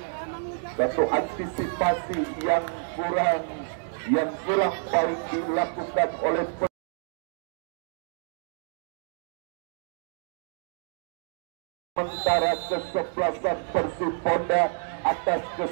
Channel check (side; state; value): left; silent; digital silence